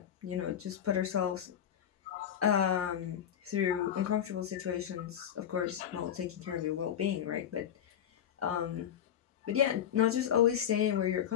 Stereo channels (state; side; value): quieter; right; 9.5 dB